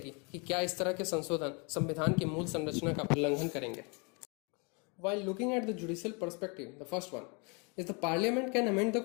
कि क्या इस तरह के संशोधन संविधान की मूल संरचना का उल्लंघन करेंगे। While looking at the judicial perspective, the first one is the parliament can amend the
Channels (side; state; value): right; quieter; 32.5 dB